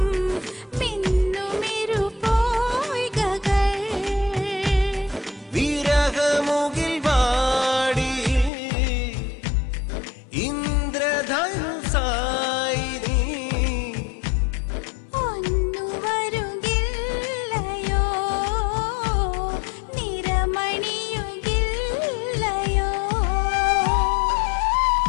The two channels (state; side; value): drops out; right; at 8.5 s